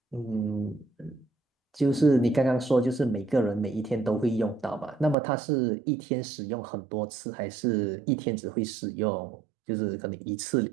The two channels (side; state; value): left; drops out; at 5.2 s